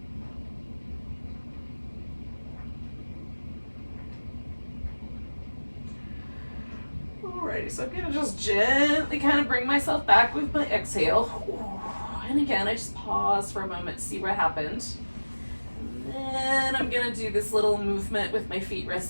Alrighty, so I'm gonna just gently kind of bring myself back with my exhale. And again, I just pause for a moment, see what happened. And then I'm gonna do this little movement with my feet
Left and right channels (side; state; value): both; inverted; correlation -1.00